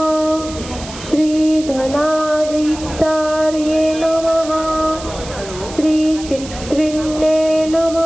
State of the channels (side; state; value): right; noise; hiss, 14 dB below the sound